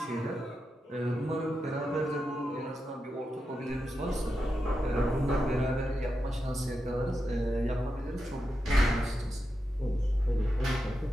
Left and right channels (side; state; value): both; normal; correlation 0.88